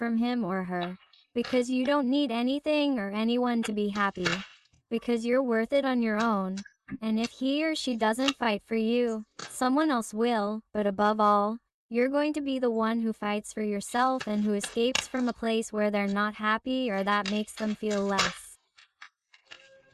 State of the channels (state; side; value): identical; both; correlation 1.00